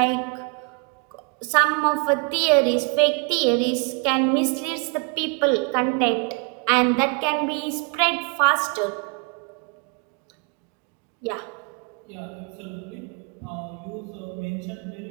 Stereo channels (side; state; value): left; quieter; 36.1 dB